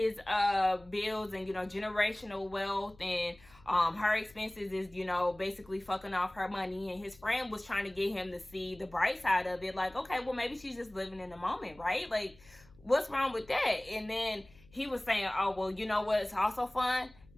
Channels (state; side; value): noise; left; hum, 26 dB below the sound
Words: bills and, you know, generational wealth, and her expenses is, you know, basically fucking off her money. And his friend was trying to get him to see the bright side of it. Like, okay, well, maybe she's just living in the moment, right? Like, what's wrong with that? And then he was saying, oh, well, you know what? It's also fun.